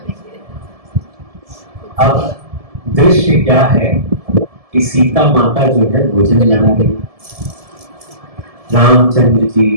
अब दृश्य क्या है कि सीता माता जो है भोजन बना रही, रामचंद्र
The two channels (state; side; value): late; left; 1.7 ms